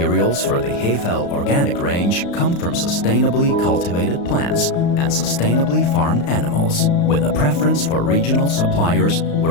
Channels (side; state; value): right; late; 35 ms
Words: for the HEFEL Organic range come from sustainably cultivated plants and sustainably farmed animals, with a preference for regional suppliers